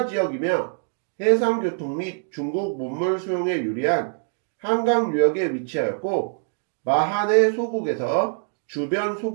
지역이며 해상교통 및 중국 문물 수용에 유리한 한강 유역에 위치하였고 마한의 소국에서 주변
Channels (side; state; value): left; silent; digital silence